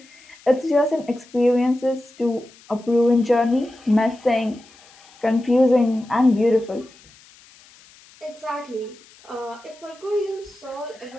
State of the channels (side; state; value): left; noise; hiss, 26 dB below the sound